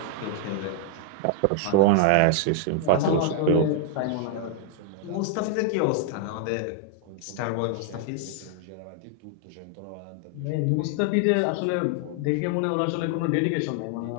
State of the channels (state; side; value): different; both; correlation 0.00